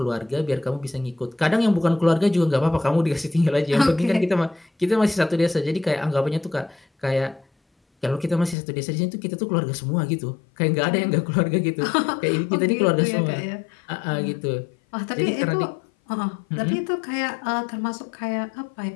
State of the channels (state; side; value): drops out; right; at 8.6 s